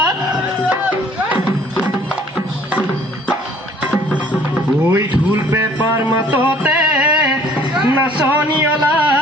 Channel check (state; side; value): normal; both; correlation 0.56